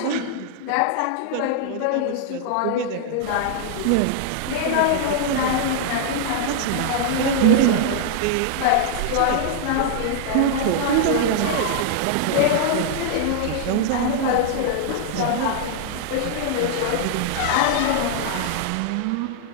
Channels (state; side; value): different; both; correlation -0.01